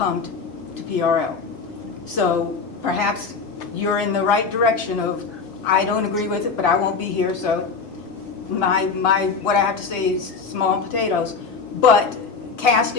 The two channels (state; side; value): quieter; right; 5.0 dB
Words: to PRL. So perhaps you're in the right direction of, I don't agree with it, but I won't be here, so what I have to say is small potatoes. But